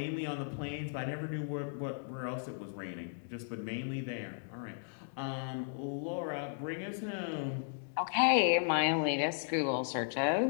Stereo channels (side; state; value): right; silent; digital silence